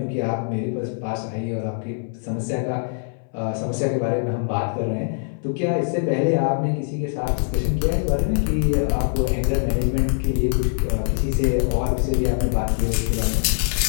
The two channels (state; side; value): silent; right; 64 dB below the other